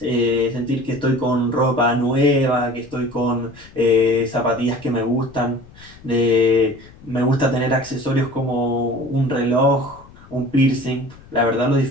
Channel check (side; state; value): left; noise; rumble, 23 dB below the sound